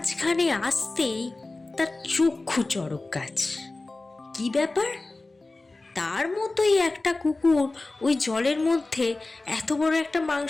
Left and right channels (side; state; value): right; quieter; 3.2 dB